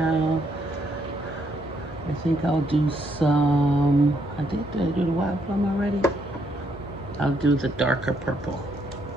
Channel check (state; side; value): normal; both; correlation 0.73